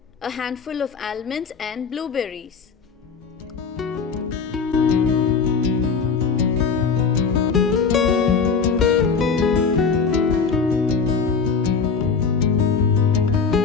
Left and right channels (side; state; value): right; quieter; 5.5 dB